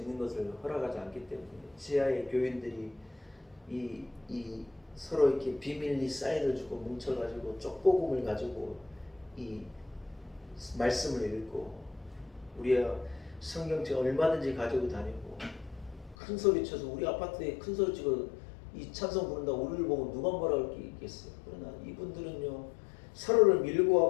것을 허락하지 않기 때문에 지하의 교인들이 이 서로 이렇게 비밀리 사인을 주고 뭉쳐가지고 쪽복음을 가지고 이 말씀을 읽고 우리가 성경책 얼마든지 가지고 다니고 큰 소리 쳐서 우리 아파트에 큰 소리 치고 이 찬송 부른다고 우리를 보고 누가 뭐라 할 게 있겠어요. 그러나 이분들은요 서로를 밀고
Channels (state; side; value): drops out; right; at 16.2 s